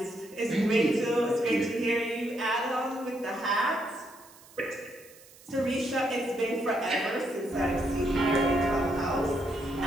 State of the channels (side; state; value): right; noise; hiss, 23 dB below the sound